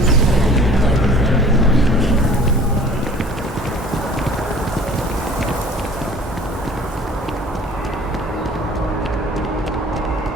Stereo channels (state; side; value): normal; both; correlation 0.49